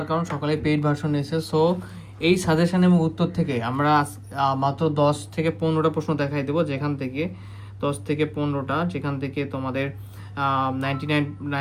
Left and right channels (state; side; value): identical; both; correlation 1.00